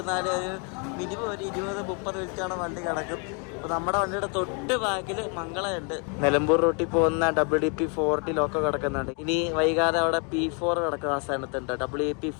ഒരു മിനിമം ഒരു 20-30 മിനിറ്റാണ് വണ്ടി കിടക്കും. അപ്പോൾ നമ്മുടെ വണ്ടിയുടെ തൊട്ട് ബാക്കിൽ മംഗളമുണ്ട്. നിലമ്പൂർ റൂട്ടിൽ പോകുന്ന WDP4 ലോക്കോ കിടക്കുന്നുണ്ട്. ഇനി വൈകാതെ അവിടെ P4 കിടക്കും. ആ സ്ഥാനത്തുണ്ട്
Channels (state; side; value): quieter; right; 36.5 dB